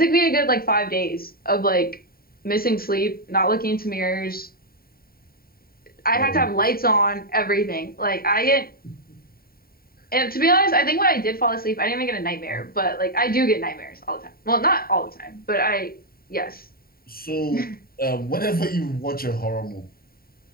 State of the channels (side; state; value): right; late; 0.43 ms